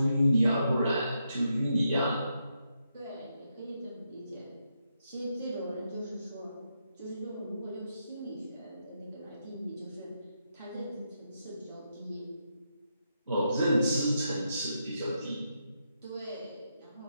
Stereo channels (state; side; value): inverted; both; correlation -0.82